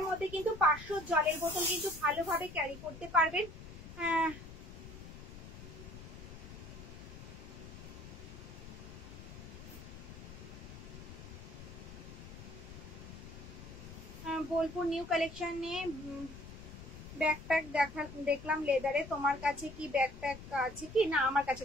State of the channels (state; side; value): noise; left; rumble, 13 dB below the sound